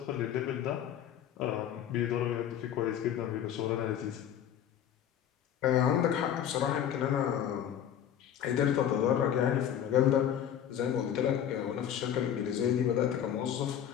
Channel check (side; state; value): right; quieter; 9.8 dB